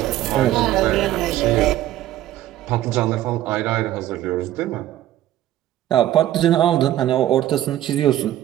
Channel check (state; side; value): quieter; left; 13.4 dB